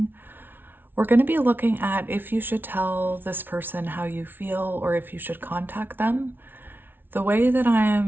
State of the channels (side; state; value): left; late; 0.10 ms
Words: we're going to be looking at if you should tell this person how you feel or if you should contact them. The way that